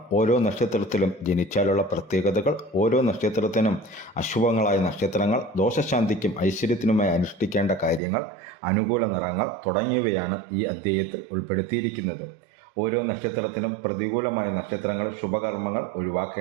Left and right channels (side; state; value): left; drops out; at 8.0 s